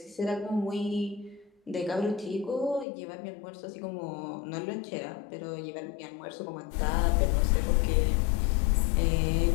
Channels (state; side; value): drops out; right; at 2.9 s